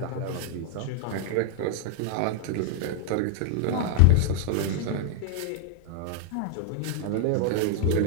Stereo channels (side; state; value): both; different; correlation 0.00